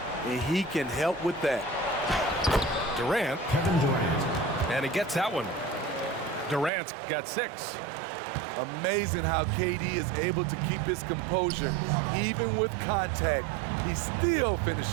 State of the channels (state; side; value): drops out; left; at 6.7 s